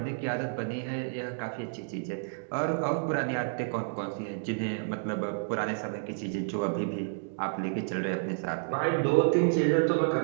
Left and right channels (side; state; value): left; silent; digital silence